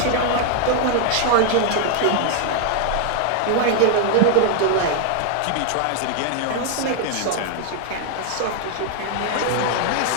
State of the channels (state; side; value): different; both; correlation 0.00